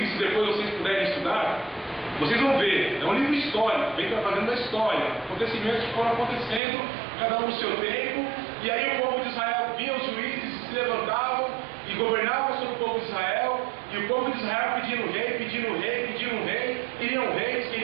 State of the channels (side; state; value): left; drops out; at 6.6 s